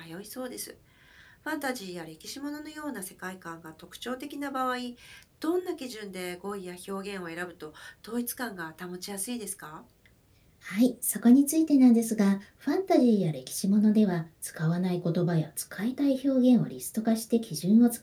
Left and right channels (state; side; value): identical; both; correlation 1.00